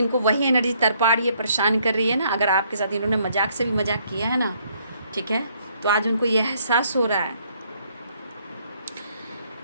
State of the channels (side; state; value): both; inverted; correlation -0.68